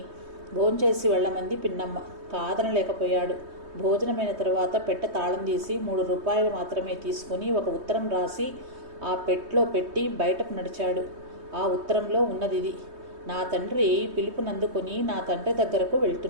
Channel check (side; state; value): left; late; 3.2 ms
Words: భోంచేసి వెళ్ళమంది పిన్నమ్మ. కాదనలేకపోయాడు. భోజనమైన తరువాత పెట్టె తాళం తీసి 3 రూపాయలు మాత్రమే తీసుకుని ఒక ఉత్తరం రాసి ఆ పెట్లో పెట్టి బయటకు నడిచాడు. ఆ ఉత్తరంలో ఉన్నదిది: నా తండ్రి పిలుపునందుకొని నా తండ్రి దగ్గరకు